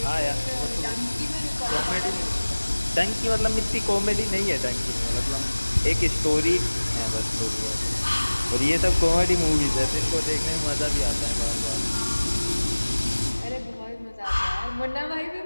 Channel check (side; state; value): both; inverted; correlation -1.00